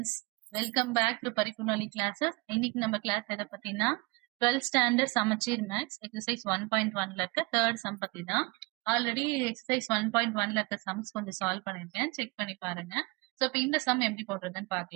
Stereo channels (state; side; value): quieter; left; 26.1 dB